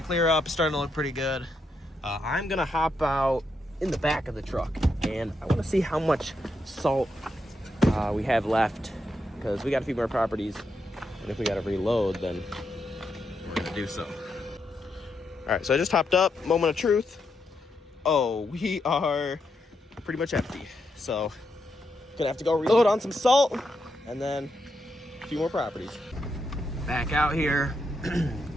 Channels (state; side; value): normal; both; correlation 0.82